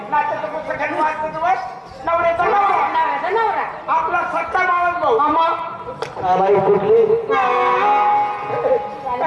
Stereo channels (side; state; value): both; identical; correlation 1.00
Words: नाचाचं पुस्तक वाचतं तुम्हाला नवऱ्याचा नवरा आपला सत्ता मावस भाऊ कुठली